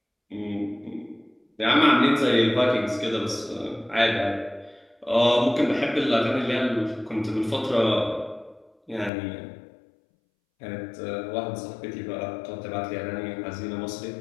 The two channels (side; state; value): right; drops out; at 9.1 s